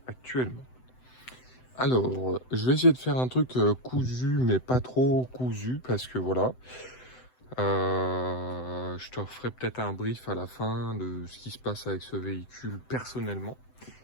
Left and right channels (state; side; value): late; right; 7.9 ms